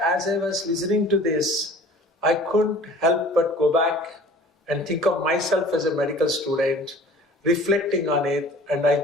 as I was listening to this, I couldn't help but go back and think of myself as a medical student, reflecting on it, and I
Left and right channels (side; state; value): both; normal; correlation 0.47